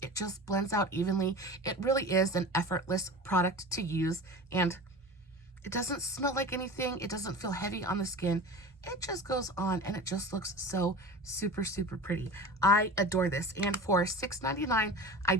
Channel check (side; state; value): both; normal; correlation 0.33